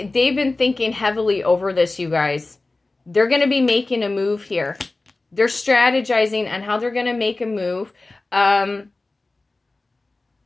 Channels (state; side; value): quieter; right; 3.2 dB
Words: been thinking heavily over this, you guys. They're going to be making a move here. They're strategizing on how they're going to make a move.